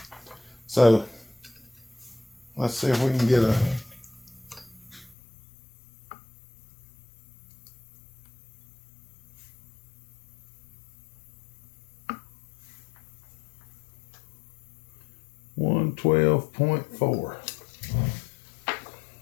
So let's see if we can get a $112.4.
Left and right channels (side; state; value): right; drops out; at 5.2 s